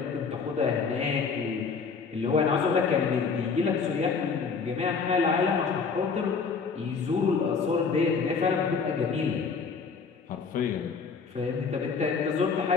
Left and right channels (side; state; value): right; quieter; 5.3 dB